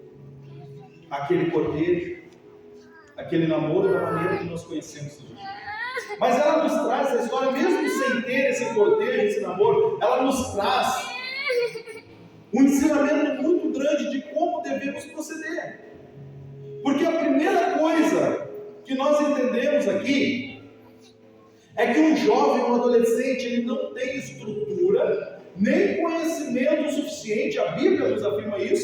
aquele cortejo, aquele namoro da maneira que nós conhecemos hoje. Mas ela nos traz a história, mesmo sem ter esse cortejo, esse namoro, ela nos traz um ensinamento muito grande de como devemos proceder. Porque a primeira coisa que nós entendemos aqui é que um jovem, um adolescente, ele não tem estrutura, nem conhecimento suficiente, a Bíblia nos afirma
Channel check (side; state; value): both; identical; correlation 1.00